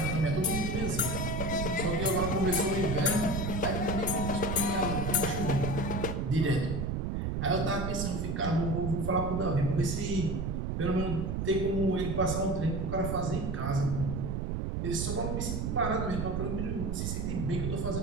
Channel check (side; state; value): right; noise; rumble, 1 dB below the sound